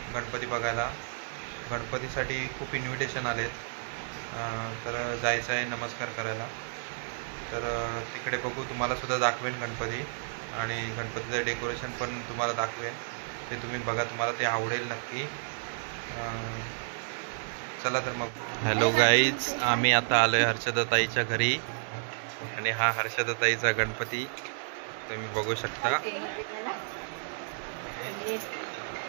गणपती बघायला. गणपतीसाठी खूप इन्व्हिटेशन आलेत, तर जायचं आहे नमस्कार करायला. तर तिकडे बघू, तुम्हालासुद्धा दाखवेन गणपती आणि गणपतीचं डेकोरेशन पण तुम्हाला दाखवेन. ते तुम्ही बघा, तुम्हाला ते आवडेल नक्की. चला तर मग. हॅलो गाईज, आम्ही आता आलोय हर्षदाताईच्या घरी आणि हा हर्षदाताईचा गणपती तुम्ही बघू शकता.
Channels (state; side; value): silent; left; digital silence